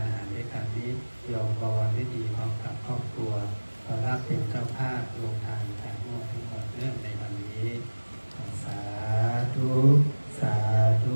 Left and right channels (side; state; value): both; inverted; correlation -1.00